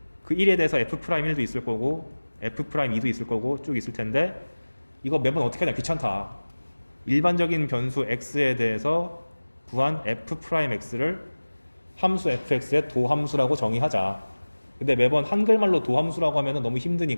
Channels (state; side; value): inverted; both; correlation -1.00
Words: 그 1에 대해서 f'1도 있을 거고 f'2도 있을 거고 쭉 있을 텐데 이거 매번 어떻게 하냐, 귀찮다. 일반적인 변수 x에 대해서 구한 f'x를 함수 fx의 도함수라고 정의하자. 근데 매번 한글말로 도함수라고 하면 너무